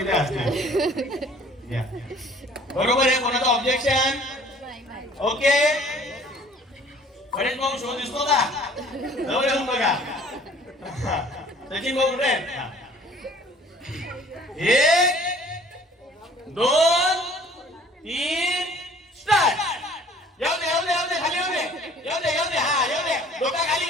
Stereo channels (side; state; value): both; normal; correlation 0.53